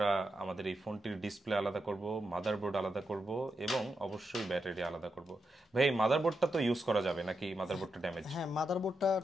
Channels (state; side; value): normal; both; correlation 0.85